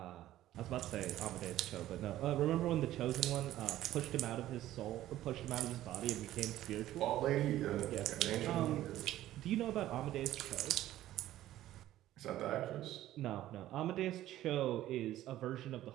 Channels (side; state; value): left; quieter; 14.0 dB